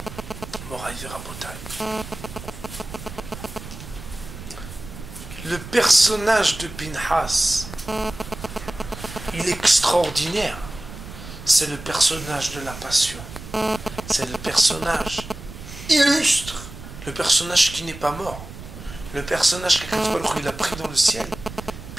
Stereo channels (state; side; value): noise; right; rumble, 13 dB below the sound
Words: Moraï Rabotai. Le personnage de Pinhas, il est extraordinaire. c'est le personnage de la passion. C'est le personnage illustre, le personnage qui n'est pas mort, le personnage qu'Akadosh Baruch Hu, il a pris dans le ciel.